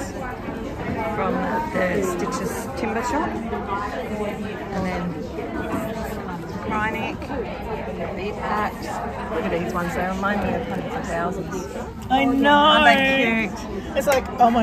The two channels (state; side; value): identical; both; correlation 1.00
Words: from the Stitches timber shop. And then Krynic, bee packs. Look at these ones, they remind me of hundreds of thousands. I know. Aren't they cute? It's like, oh